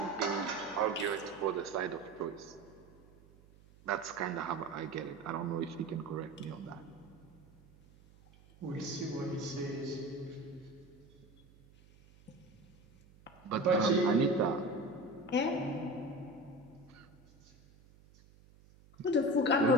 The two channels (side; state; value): right; noise; hum, 25 dB below the sound